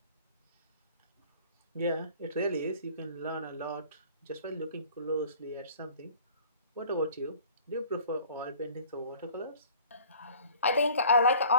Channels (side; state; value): both; inverted; correlation -0.50